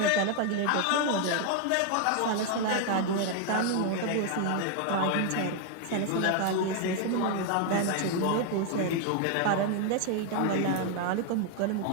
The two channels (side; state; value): both; different; correlation 0.00